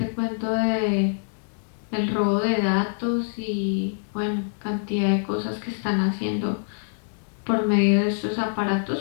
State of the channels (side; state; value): right; silent; 62 dB below the other